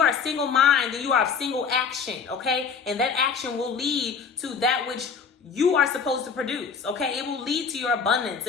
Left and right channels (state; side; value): quieter; right; 5.9 dB